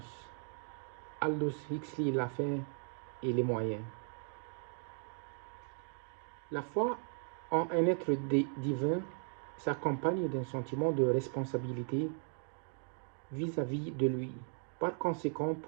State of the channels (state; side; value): silent; left; 53 dB below the other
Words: Aldous Huxley, la fin et les moyens. La foi en un être divin s'accompagne d'un sentiment de responsabilité vis-à-vis de lui. Par conséquent,